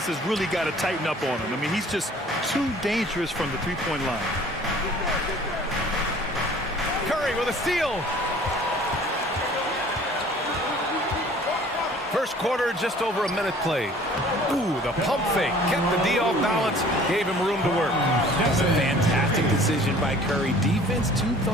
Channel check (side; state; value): both; normal; correlation 0.51